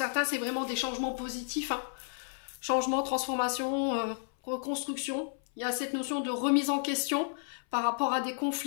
c'est vraiment des changements positifs, hein. Changement, transformation, reconstruction. Il y a cette notion de remise en question par rapport à des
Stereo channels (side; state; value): right; silent; 56 dB below the other